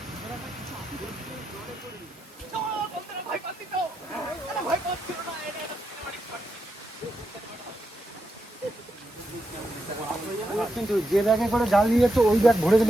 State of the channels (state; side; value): normal; both; correlation 0.85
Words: কিন্তু যে ব্যাগে করে জাল নিয়ে যাচ্ছে ওই ব্যাগ ভরে